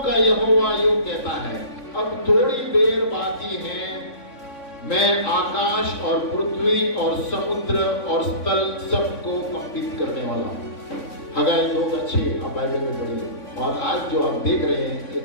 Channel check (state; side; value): late; right; 3.6 ms